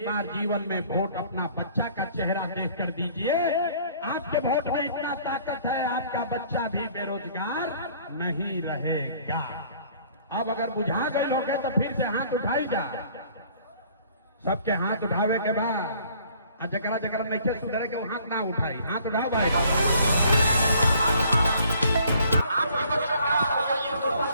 बार जीवन में वोट अपना बच्चा का चेहरा देखकर दीजिए। आपके वोट में इतना ताकत है, आपका बच्चा भी बेरोजगार नहीं रहेगा। अब अगर बुझा गए लोग तो फिर से हाथ उठाई जा। सबके हाथ उठावे के बाद जकरा जकरा नहीं सुधरे के वो हाथ ना उठाई। हाथ उठाओ भाई।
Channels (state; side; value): inverted; both; correlation -0.58